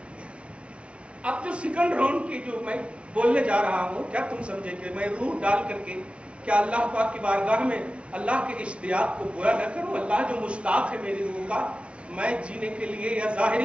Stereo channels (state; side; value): late; left; 0.060 ms